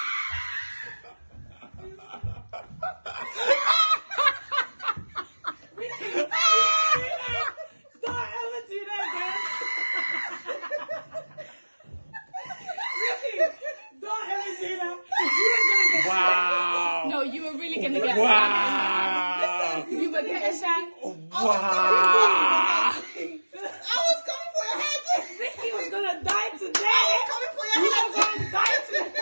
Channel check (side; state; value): both; inverted; correlation -1.00